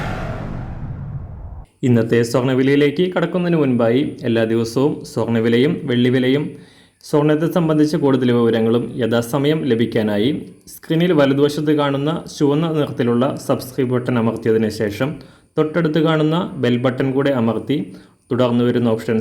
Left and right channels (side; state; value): both; identical; correlation 1.00